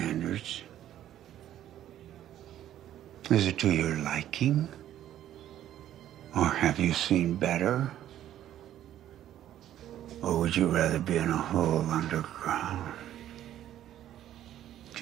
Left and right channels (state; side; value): quieter; left; 11.9 dB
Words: Is it to your liking? Or have you seen better? Or would you rather be in a hole underground?